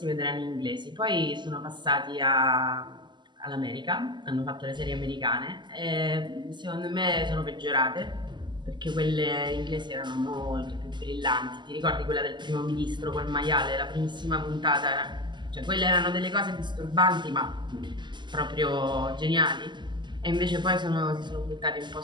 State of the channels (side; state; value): left; late; 0.22 ms